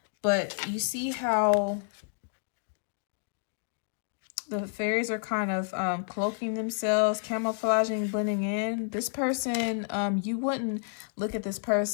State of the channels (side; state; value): right; silent; digital silence